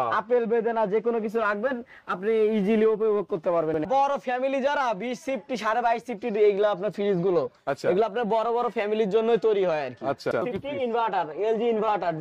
আপেল বেদানা যে কোনো কিছু রাখবেন আপনি ইজিলি উপভোগ করতে পারবেন। বড় ফ্যামিলি যারা 20 সিফটি 22.5 সিফটি এগুলো আপনার ফ্রিজ গুলো এগুলো আপনার বড় বড় ফ্যামিলির জন্যই তৈরি হয় আর কি। আচ্ছা inverter LG inverter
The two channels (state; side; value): identical; both; correlation 1.00